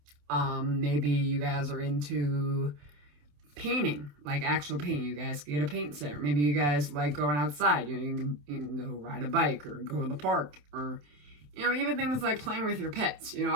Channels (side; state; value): left; late; 27 ms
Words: Maybe you guys are into painting, like actual painting. You guys get a paint set. Or maybe you guys like going outside. You can go ride a bike or go to the park, or even things like playing with your pets.